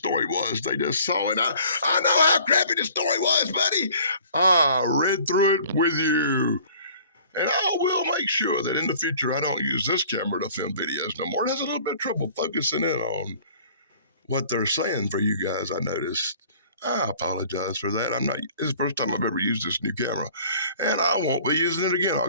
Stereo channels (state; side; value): inverted; both; correlation -0.51